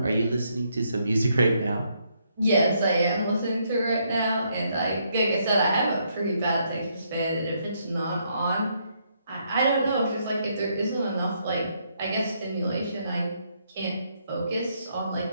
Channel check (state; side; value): inverted; both; correlation -0.74